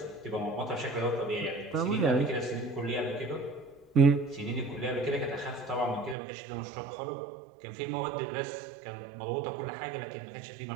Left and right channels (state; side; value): drops out; left; at 6.2 s